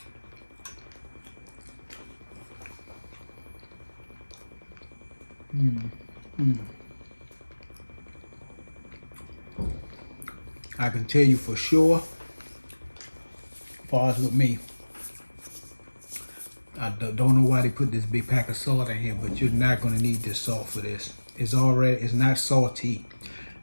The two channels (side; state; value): both; inverted; correlation -1.00